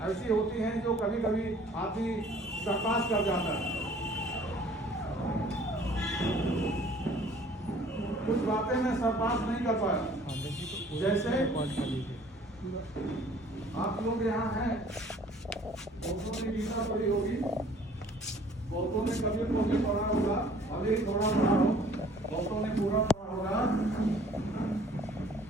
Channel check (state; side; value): normal; both; correlation 0.54